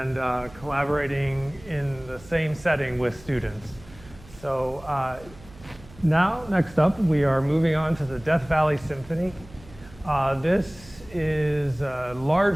collaborating in the same setting with students. So now, next up, we are moving on to the Death Valley Symphony. This is a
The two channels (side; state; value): right; noise; hum, 21 dB below the sound